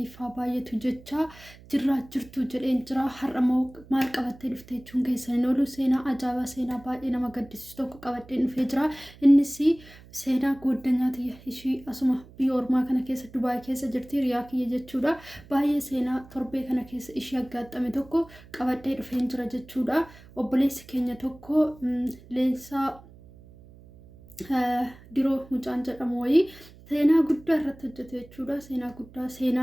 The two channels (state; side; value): noise; right; hum, 22 dB below the sound